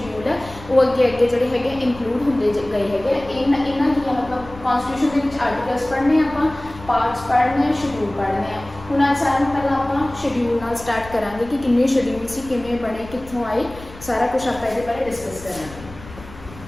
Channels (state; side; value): noise; left; rumble, 17 dB below the sound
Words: है वो अगे अगे जोड़े है इंक्लूड होंगे गए है। इन्हों की मतलब कॉन्स्टिट्यूशन के आर्टिकल्स पढ़ने आप, पार्ट्स पढ़ने, शेड्यूल पढ़ने। हुण आज सारे पहला आप शेड्यूल नाल स्टार्ट करांगे कि किन्ने शेड्यूल सी, किवें बने, कित्थों आए, सारा कुछ आप ये बारे डिस्कस करांगे।